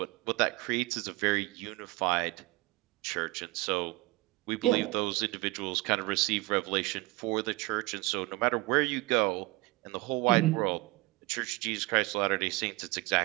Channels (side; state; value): left; quieter; 21.5 dB